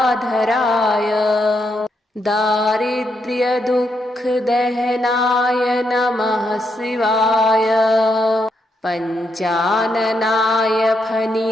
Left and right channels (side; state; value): both; normal; correlation 0.80